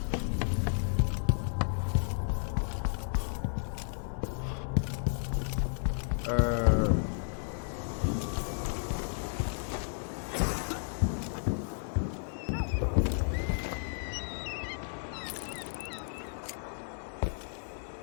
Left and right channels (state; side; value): silent; right; digital silence